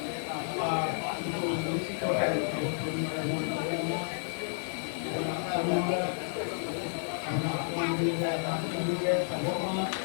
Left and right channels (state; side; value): silent; right; digital silence